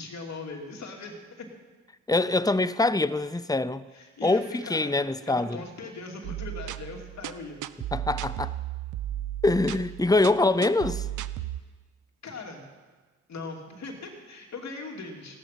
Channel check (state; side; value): normal; both; correlation 0.64